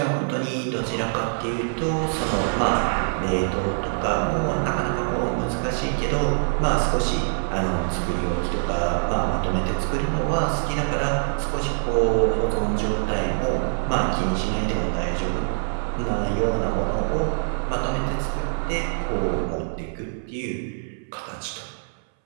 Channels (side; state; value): left; silent; 62 dB below the other